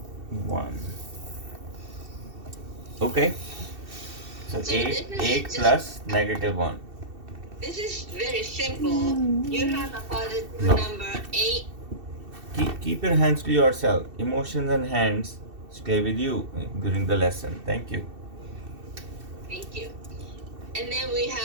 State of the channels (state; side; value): late; left; 2.7 ms